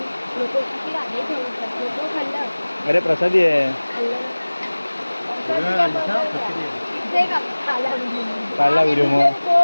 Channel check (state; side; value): inverted; both; correlation -1.00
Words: अरे प्रसादी आहे. काढला व्हिडिओ मग